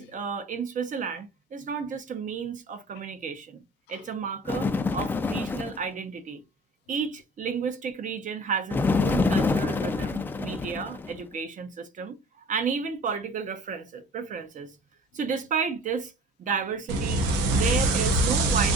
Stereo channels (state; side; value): normal; both; correlation 0.45